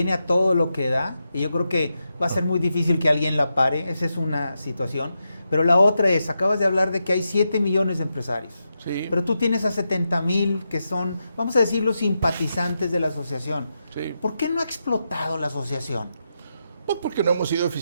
a todo lo que da, y yo creo que va a ser muy difícil que alguien la pare. Esa es una situación. Pero la otra es, acabas de hablar de que hay 7 millones de empresarios. Sí. Pero tú tienes a 70,000 que son, vamos a decir, los simpatizantes de la asociación. Sí. ¿Por qué no ha explotado la asociación? Pues porque no hemos sido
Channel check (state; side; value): inverted; both; correlation -0.86